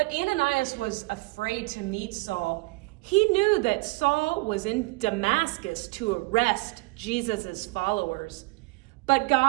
Ananias was afraid to meet Saul. He knew that Saul was in Damascus to arrest Jesus' followers. But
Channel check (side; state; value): left; quieter; 25.0 dB